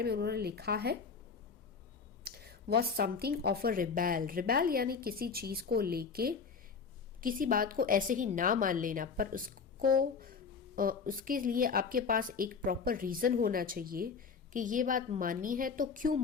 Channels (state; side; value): quieter; right; 5.5 dB